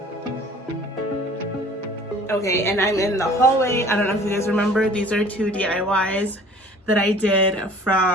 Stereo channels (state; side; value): normal; both; correlation 0.49